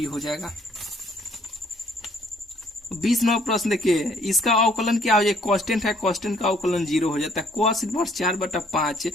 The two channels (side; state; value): both; normal; correlation 0.63